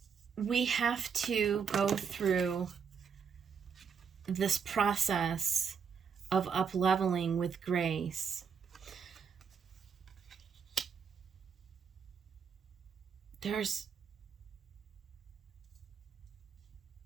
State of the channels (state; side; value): quieter; left; 6.6 dB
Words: we have to go through this process of up-leveling with grace.